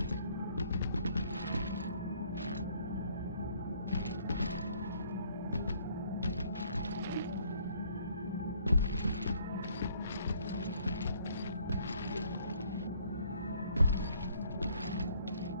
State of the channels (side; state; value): both; inverted; correlation -0.63